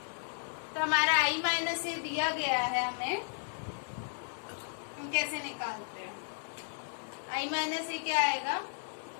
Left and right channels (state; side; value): silent; right; digital silence